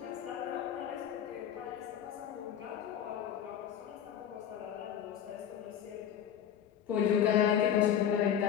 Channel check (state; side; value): quieter; right; 9.3 dB